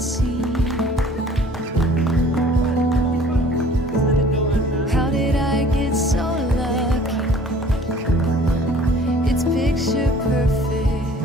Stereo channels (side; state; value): both; normal; correlation 0.51